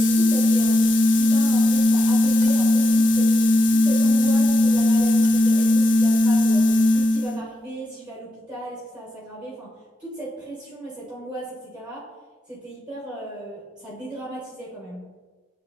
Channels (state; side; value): normal; both; correlation 0.86